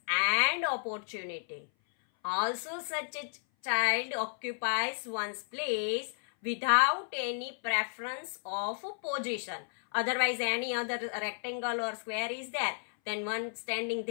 and opportunity. Also, such a child occupies one's place without any preference of position. Otherwise, any other rectangle or square is there. Then one standing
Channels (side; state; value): right; silent; 56 dB below the other